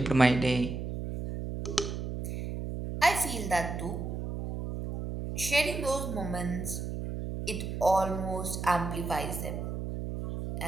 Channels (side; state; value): right; noise; hum, 5 dB below the sound